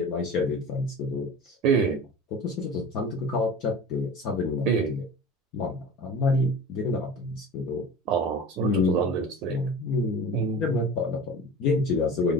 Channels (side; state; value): both; normal; correlation 0.37